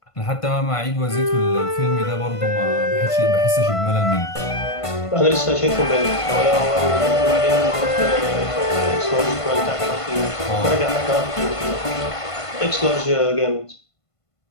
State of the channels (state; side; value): late; right; 1.5 ms